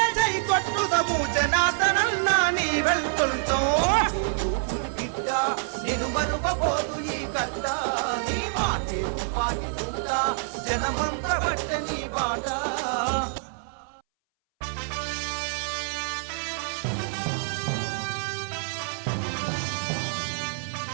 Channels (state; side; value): silent; left; 60 dB below the other